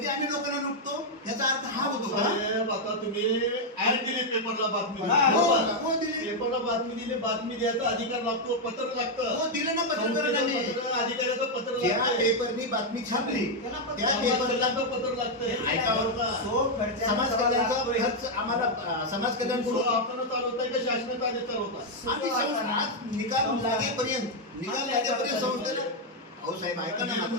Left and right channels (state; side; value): normal; both; correlation 0.00